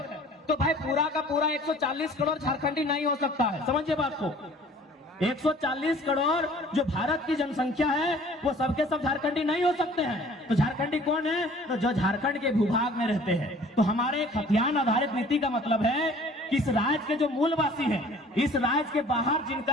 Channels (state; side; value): normal; both; correlation 0.51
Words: तो भाई पूरा का पूरा 140 करोड़ झारखंडी नहीं हो सकता है, समझिए बात को। 140 करोड़ जो भारत की जनसंख्या है वो सबके सब झारखंडी नहीं हो सकते हैं। तो झारखंडी कौन है? तो जो झारखंड के भूभाग में रहते हैं। तो हमारे खतियान आधारित नीति का मतलब है कि इस राज्य के जो मूलवासी हैं, इस राज्य के बाहर